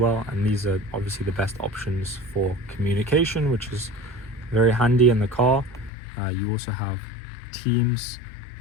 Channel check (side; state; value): right; drops out; at 5.9 s